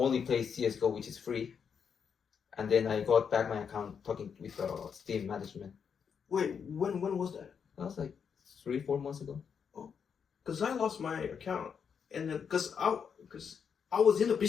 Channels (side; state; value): right; quieter; 6.8 dB